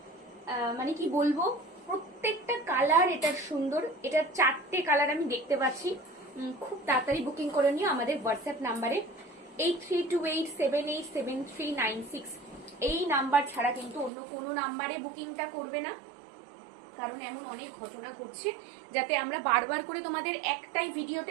মানে কি বলবো, প্রত্যেকটা কালার এটার সুন্দর। এটার 4টে কালার আমি দেখতে পাচ্ছি। খুব তাড়াতাড়ি বুকিং করে নিও আমাদের হোয়াটসঅ্যাপ নাম্বারে 8328787396। এই নাম্বার ছাড়া কিন্তু অন্য কোনো নাম্বারে বুকিংটা করবে না, কারণ এমন অনেক ঘটনা ঘটছে, যাতে আমরা বারবার করে তোমাদের একটাই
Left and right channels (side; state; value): left; drops out; at 14.1 s